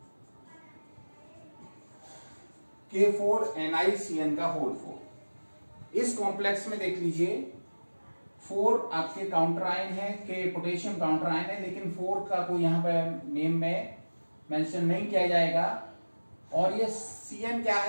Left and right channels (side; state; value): both; inverted; correlation -1.00